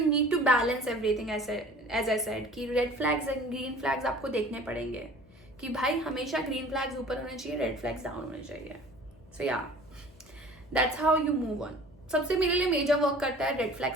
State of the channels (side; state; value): left; noise; hum, 25 dB below the sound